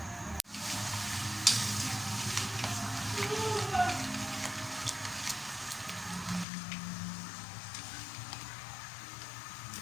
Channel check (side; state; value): right; drops out; at 6.5 s